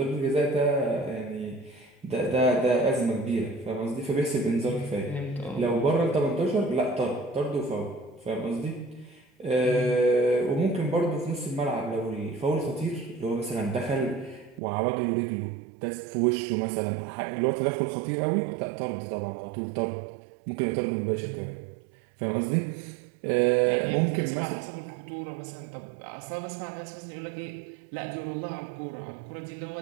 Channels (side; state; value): left; drops out; at 14.6 s